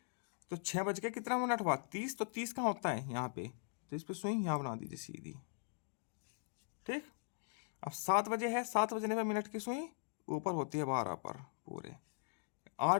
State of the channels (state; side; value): silent; right; digital silence